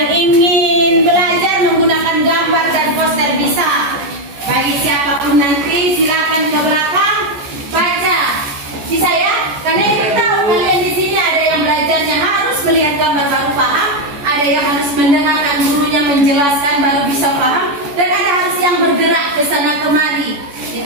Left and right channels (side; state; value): left; late; 14 ms